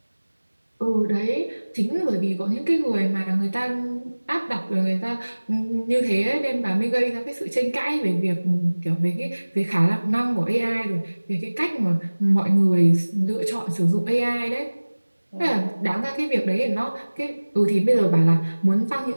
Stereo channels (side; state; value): both; inverted; correlation -1.00